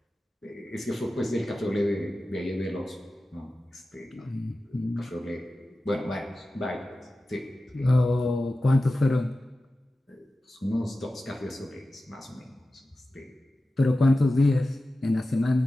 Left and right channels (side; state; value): both; normal; correlation 0.94